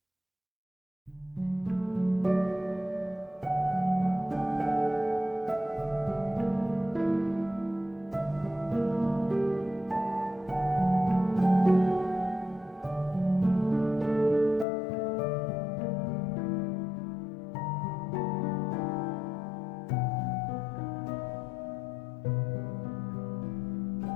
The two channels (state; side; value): drops out; right; at 14.7 s